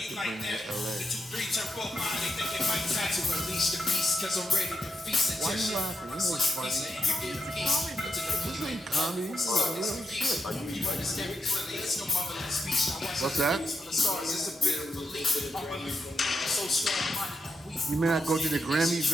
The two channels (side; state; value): both; normal; correlation 0.84